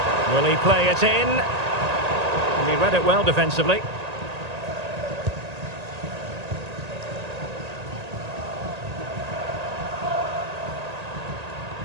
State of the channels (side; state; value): left; late; 1.8 ms